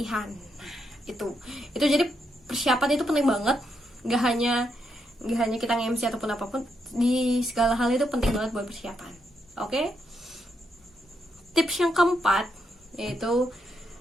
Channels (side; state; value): both; normal; correlation 0.80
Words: Nah, itu jadi persiapan itu penting banget, nggak hanya kita nge-MC ataupun apapun, di segala hal itu penting banget buat persiapan. Oke? Tips yang keempat yaitu